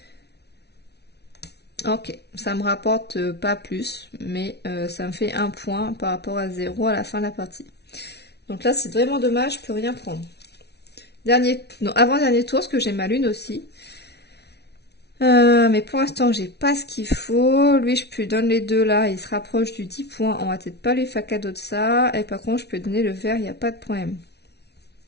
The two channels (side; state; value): right; late; 0.49 ms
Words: Ok, ça me rapporte pas plus, mais ça me fait un point par rapport à 0 à la fin de la partie. Donc là, c'est vraiment dommage, je peux rien prendre. Avant-dernier tour, parce que j'ai ma lune aussi. Mais pour l'instant, j'ai pas ce qu'il faut. Lui, je peux lui donner les deux là. Il se rapproche du 10 points. On va peut-être pas lui faire cadeau de ça. Et par contre, je peux donner le vert. Il n'y a pas de problème.